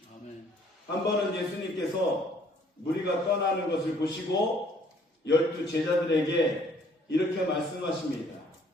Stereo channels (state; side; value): normal; both; correlation 0.61